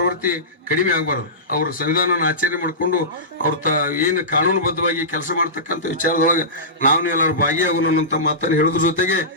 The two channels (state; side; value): normal; both; correlation -0.19